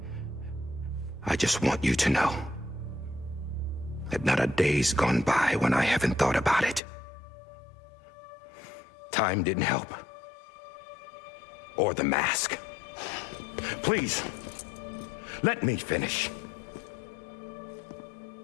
I just want you to know that not a day's gone by when I haven't thought about it. Time didn't help. Or the mask. Please, let me finish.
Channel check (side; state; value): right; drops out; at 6.8 s